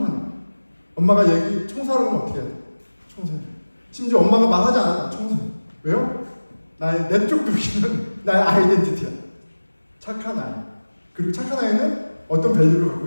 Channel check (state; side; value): inverted; both; correlation -1.00